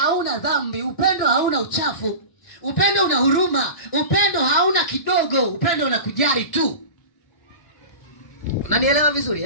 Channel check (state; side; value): late; right; 1.0 ms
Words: dhambi. Upendo hauna uchafu. Upendo una huruma. Upendo hauna kidogo. Upendo unakujali tu. Unanielewa